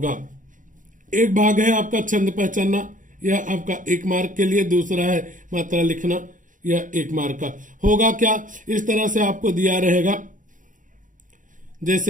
एक भाग है आपका छंद पहचानना, यह आपका 1 मार्क के लिए। दूसरा है मात्रा लिखना, यह 1 मार्क का होगा। क्या इस तरह से आपको दिया रहेगा,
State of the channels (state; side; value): late; left; 0.38 ms